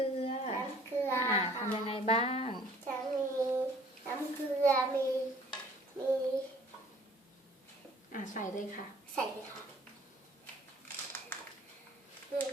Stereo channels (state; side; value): normal; both; correlation 0.55